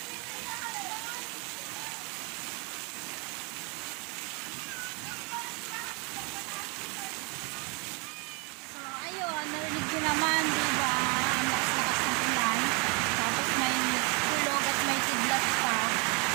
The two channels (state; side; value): quieter; left; 31.8 dB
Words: Narinig ko naman, diba? Ang lakas-lakas ng ulan. Tapos may kulog at may kidlat pa.